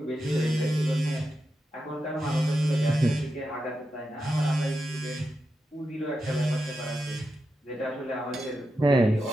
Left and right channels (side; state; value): both; normal; correlation 0.88